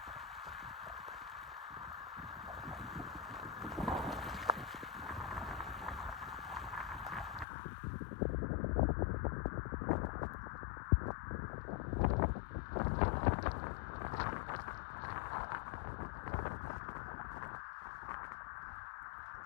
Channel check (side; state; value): right; drops out; at 7.5 s